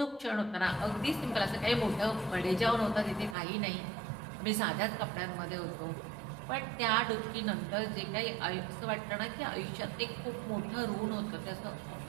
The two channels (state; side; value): drops out; left; at 3.4 s